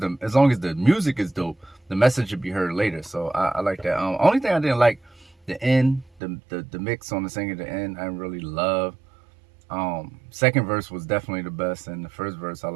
music is dope, the message should be heard later. So I like that. Only thing I didn't like, the end, the mix on the singing at the end, I didn't really love. Second verse was definitely the best, and the first verse I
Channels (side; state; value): left; drops out; at 6.2 s